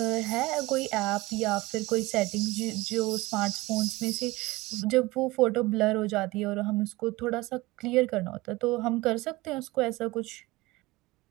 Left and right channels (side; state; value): left; quieter; 20.3 dB